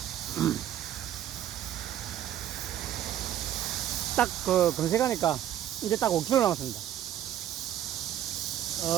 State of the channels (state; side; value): quieter; left; 11.4 dB